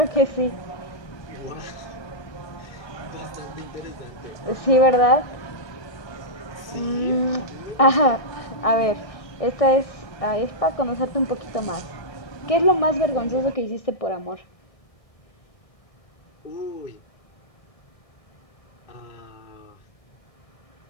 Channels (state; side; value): late; right; 1.6 ms